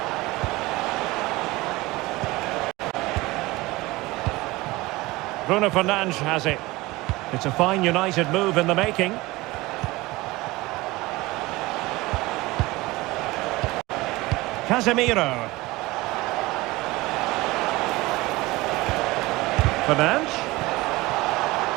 Bruno Fernandes has it. It's a fine United move in the making. Casemiro. Fernandes.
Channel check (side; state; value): left; quieter; 20.7 dB